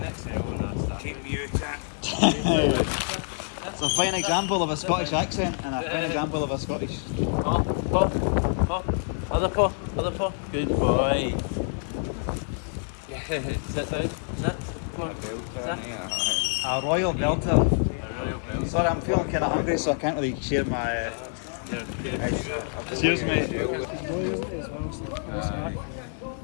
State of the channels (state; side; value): silent; right; 60 dB below the other